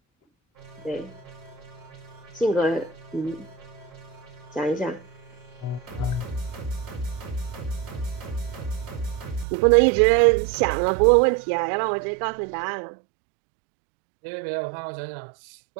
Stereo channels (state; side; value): drops out; left; at 9.5 s